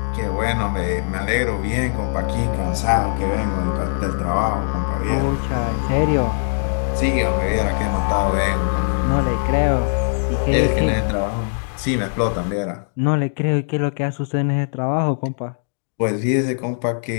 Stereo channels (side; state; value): right; silent; digital silence